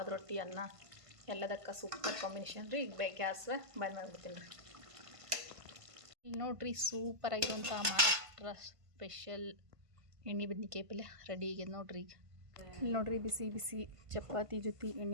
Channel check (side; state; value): left; late; 1.5 ms